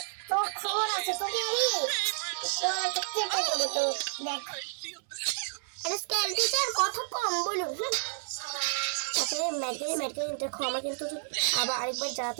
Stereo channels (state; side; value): silent; left; 57 dB below the other